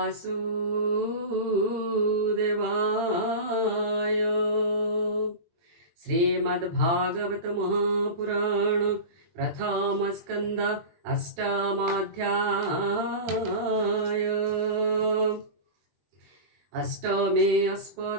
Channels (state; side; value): late; left; 20 ms